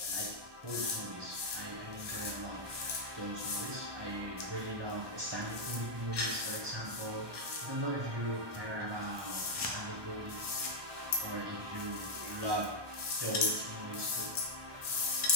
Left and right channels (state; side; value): late; left; 1.2 ms